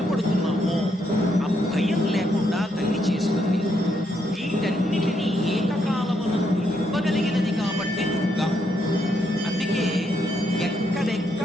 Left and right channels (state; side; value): normal; both; correlation 0.76